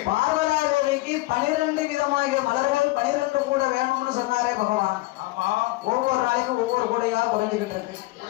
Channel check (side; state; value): right; quieter; 20.3 dB